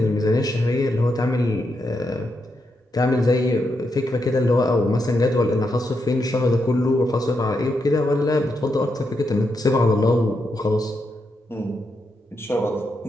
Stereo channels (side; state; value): both; normal; correlation 0.83